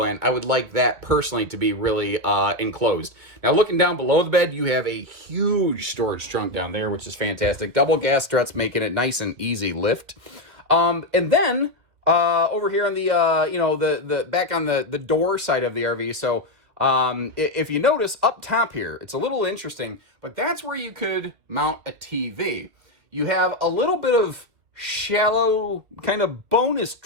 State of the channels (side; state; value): left; late; 2.5 ms